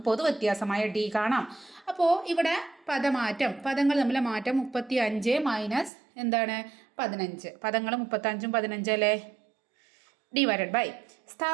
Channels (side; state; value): left; drops out; at 5.9 s